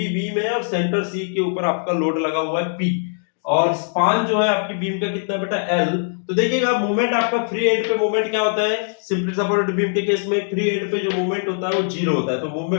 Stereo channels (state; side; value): silent; right; digital silence